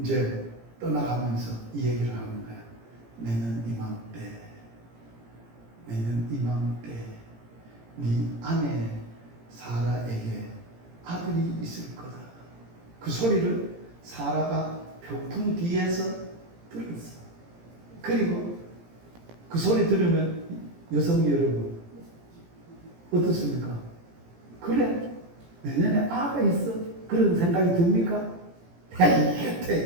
떠나가면서 이 얘기를 하는 거야. 내년 이맘때 네 아내 사라에게 아들이 있을 거다. 그 소리를 사라가 병풍 뒤에서 들었어. 그리고 그 소리 들으면 여성 여러분 어떻습니까? 그래, 내년에 아가 있어. 그런 생각이 듭니까?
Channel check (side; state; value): left; late; 17 ms